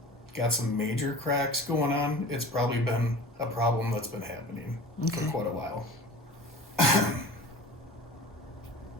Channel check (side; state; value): both; normal; correlation 0.38